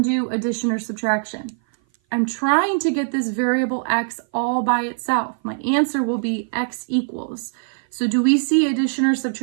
addition or subtraction. I'm trying to get this variable x all by itself. My answer will be x equals. So do we see addition or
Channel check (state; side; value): silent; left; 57 dB below the other